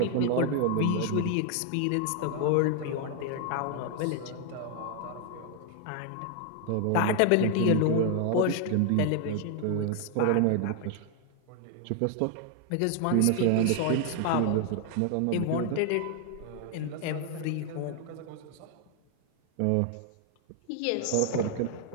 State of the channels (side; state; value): both; different; correlation 0.00